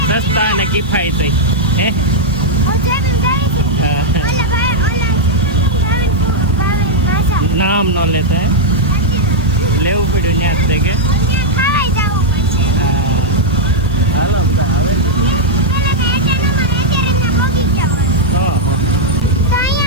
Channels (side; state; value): left; noise; hiss, 26 dB below the sound